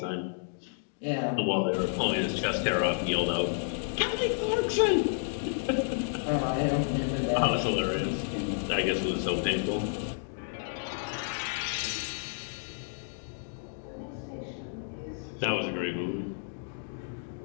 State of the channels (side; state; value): right; silent; digital silence